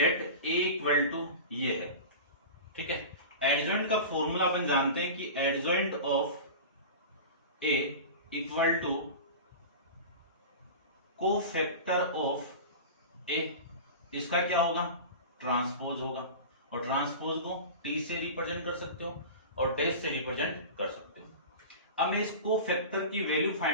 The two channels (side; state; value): both; inverted; correlation -0.31